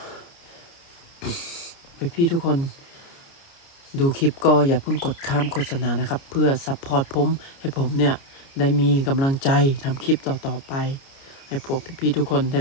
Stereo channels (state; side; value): late; right; 29 ms